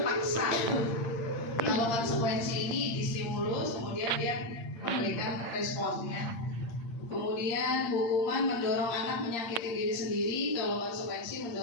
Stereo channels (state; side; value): late; right; 8.7 ms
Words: kalau konsekuensi ini distimulus, kemudian dia memberikan responnya. Kemudian hukuman mendorong anak menyakiti diri sendiri, kalau konsekuensi